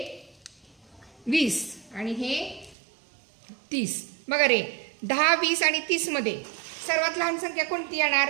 20 आणि हे 30. बघा रे, 10 20 आणि 30 मध्ये सर्वात लहान संख्या कोणती येणार?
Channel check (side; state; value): left; drops out; at 2.8 s